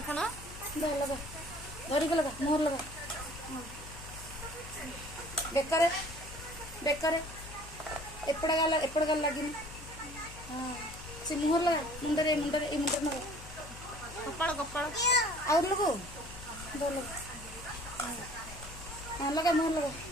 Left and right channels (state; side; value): noise; left; hum, 15 dB below the sound